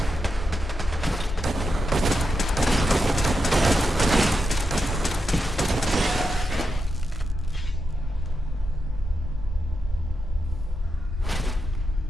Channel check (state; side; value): normal; both; correlation 0.86